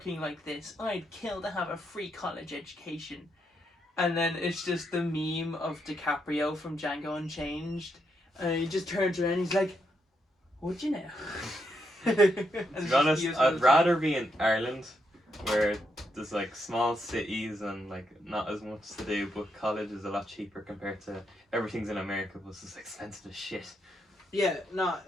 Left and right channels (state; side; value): normal; both; correlation 0.80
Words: like this. I'd kill to have a free college education. And then it's just the meme of DiCaprio from Django Unchanged. And he just turns around and he's like, would you now? To be honest, I'd rather be in Ireland, where there's like small cities and like not as much to do, but college is a lot cheaper compared to everything's in America, but it's just expensive as shit. Yeah, no,